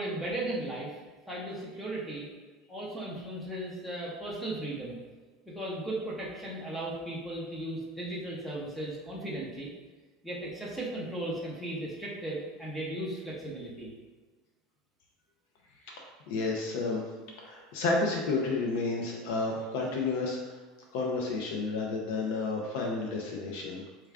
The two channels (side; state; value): both; normal; correlation 0.32